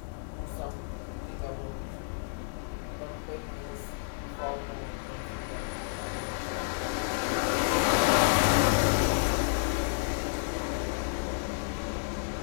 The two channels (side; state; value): right; silent; digital silence